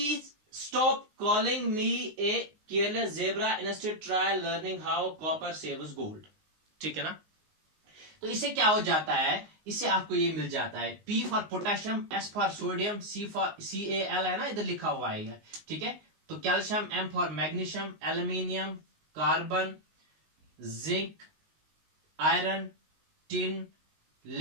stop calling me a careless zebra. Instead try learning how copper saves gold. ठीक है ना. तो इससे क्या हो जाता है, इससे आपको ये मिल जाता है, P for potassium, S for sodium, C for CaL है ना, इधर लिखा हुआ है. ठीक है. तो calcium, M for magnesium, aluminium, carbon, zinc, iron, tin,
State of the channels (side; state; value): left; late; 19 ms